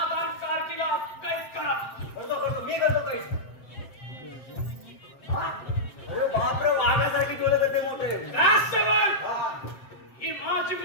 कार्टीला कैद करा. मी करतो काही. अरे बापरे, वाघासारखी डोळे करते मोठे. राजसेवक ही माझी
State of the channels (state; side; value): late; right; 7.7 ms